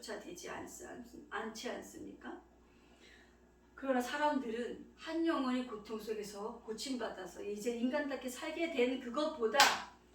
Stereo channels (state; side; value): identical; both; correlation 1.00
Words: 되지 않지 않습니까? 그러나 사람들은 한 영혼이 고통 속에서 고침받아서 이제 인간답게 살게 된 그것보다